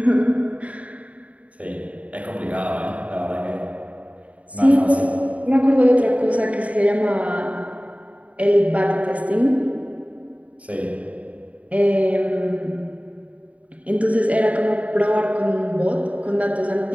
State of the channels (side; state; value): left; late; 0.067 ms